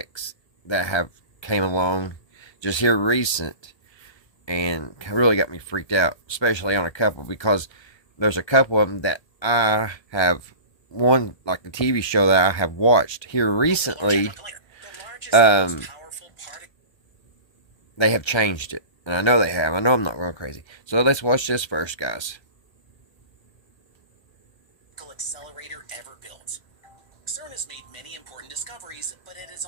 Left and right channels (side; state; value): right; late; 1.3 ms